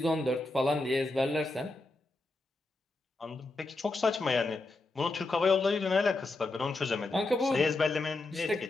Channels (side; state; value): right; quieter; 3.1 dB